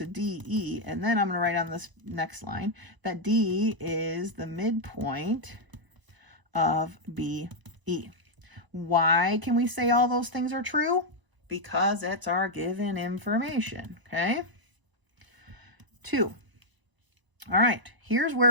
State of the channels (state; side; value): late; left; 1.0 ms